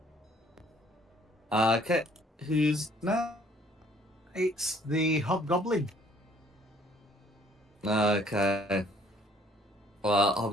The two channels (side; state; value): both; normal; correlation 0.60